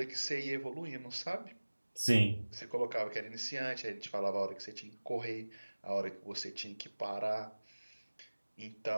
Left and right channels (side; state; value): both; inverted; correlation -1.00